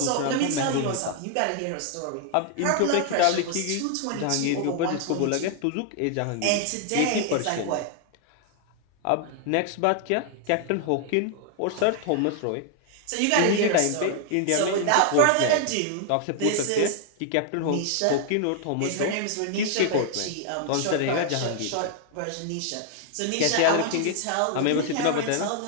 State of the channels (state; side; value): different; both; correlation 0.00